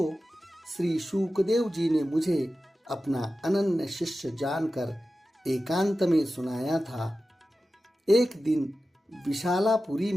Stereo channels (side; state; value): both; normal; correlation 0.94